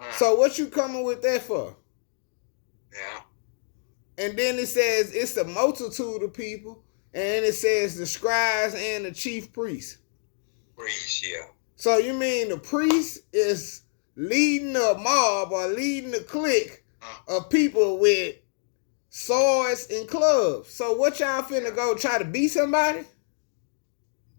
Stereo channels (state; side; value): silent; right; digital silence